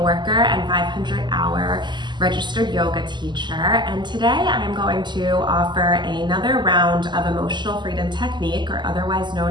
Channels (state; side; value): late; left; 0.21 ms